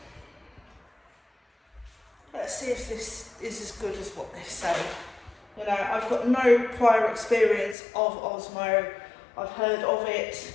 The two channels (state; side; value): drops out; right; at 7.8 s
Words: Let's see if this is as good as what they say. You know, I've got no prior experience of Osmo. I've heard of it.